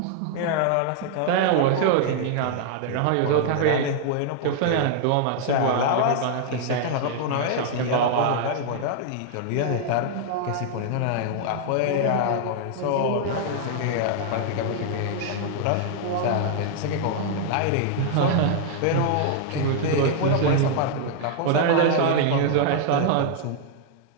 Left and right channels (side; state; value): both; different; correlation -0.01